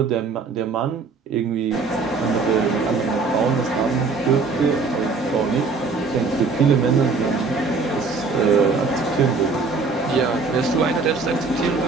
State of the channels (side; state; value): left; quieter; 4.3 dB